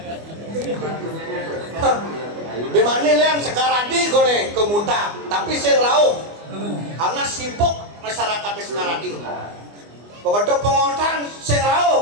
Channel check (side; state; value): left; late; 24 ms